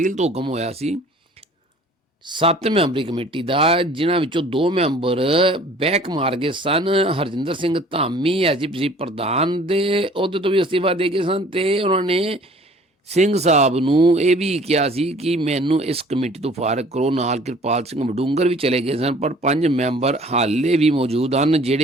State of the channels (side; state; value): both; normal; correlation 0.51